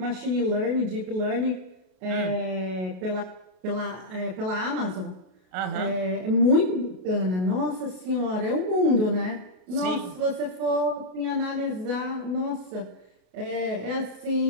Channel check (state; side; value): late; left; 33 ms